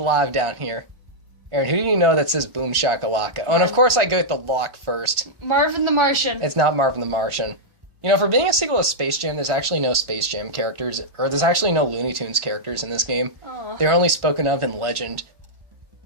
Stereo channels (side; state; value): left; late; 1.4 ms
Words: down here. Aaron, who do you know that says boom shakalaka? Oh, and of course I go with the lock first. Marvin the Martian. It's not Marvin the Martian. You know, for being a sequel to Space Jam, there's actually no Space Jam characters, or there's actually no Looney Tunes characters in this game. Aw. They're only spoken of in legend,